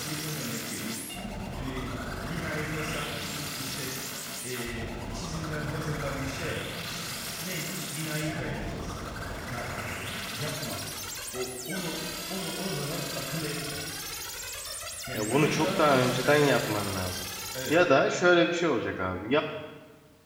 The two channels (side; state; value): both; identical; correlation 1.00